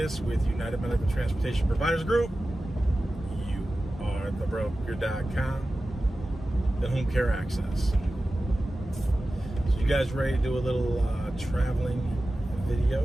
with United Medical Transportation Providers Group. You are thebroker.com, the home care access. So you guys ready to do a little traveling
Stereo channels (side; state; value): both; normal; correlation 0.95